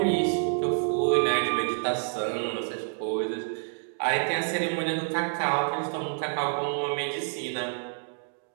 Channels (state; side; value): silent; left; digital silence